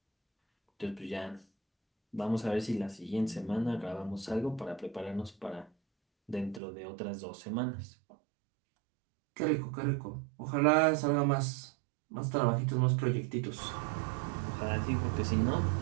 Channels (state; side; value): drops out; left; at 6.6 s